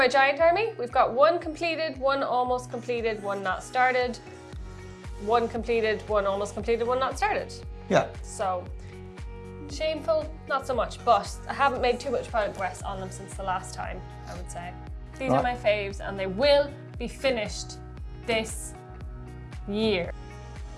giant army. We've got one completed, one almost completed, one not started, one completed, one almost completed, one not started. Yeah. So, shameful, not so much, but I haven't made too much progress on them since the last time, I would say. These are my faves, and they will be finished this year.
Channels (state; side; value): identical; both; correlation 1.00